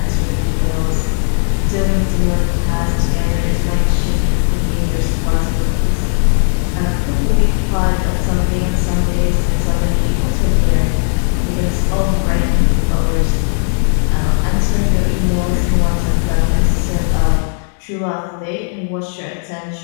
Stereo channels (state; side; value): silent; right; 64 dB below the other